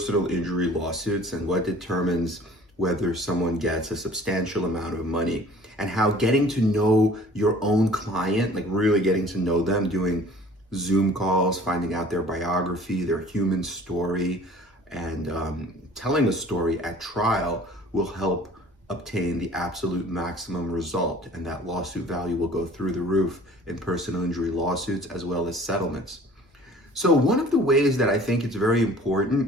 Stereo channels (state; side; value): normal; both; correlation 0.49